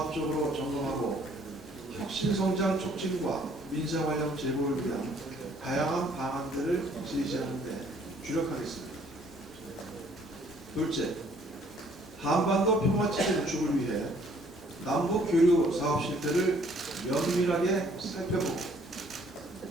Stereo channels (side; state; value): both; normal; correlation 0.61